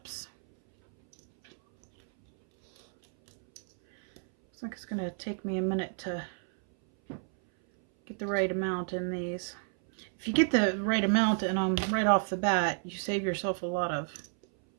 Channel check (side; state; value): left; silent; 57 dB below the other